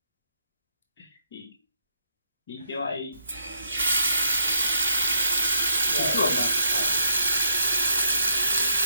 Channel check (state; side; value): inverted; both; correlation -0.76